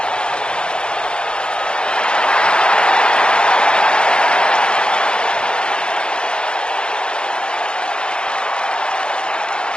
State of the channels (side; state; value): right; late; 0.051 ms